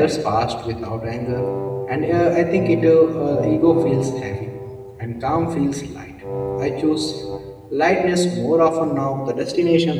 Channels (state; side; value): identical; both; correlation 1.00